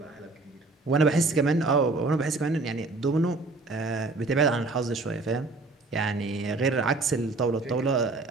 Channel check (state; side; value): quieter; left; 3.5 dB